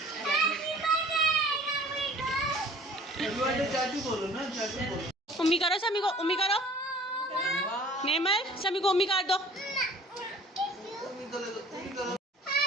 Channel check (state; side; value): normal; both; correlation 0.50